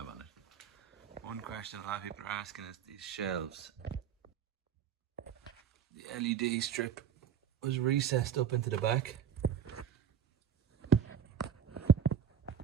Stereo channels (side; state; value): left; quieter; 8.3 dB